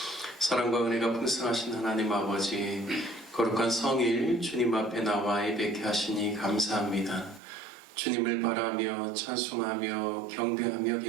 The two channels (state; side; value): drops out; left; at 7.4 s